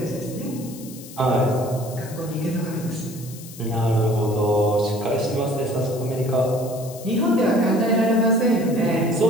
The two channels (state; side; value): noise; left; hiss, 17 dB below the sound